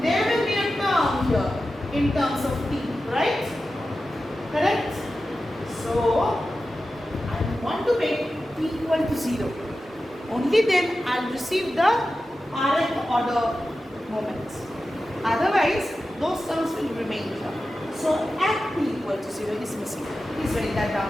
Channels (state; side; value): normal; both; correlation 0.93